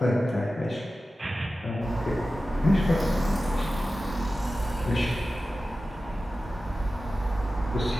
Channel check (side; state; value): both; normal; correlation 0.94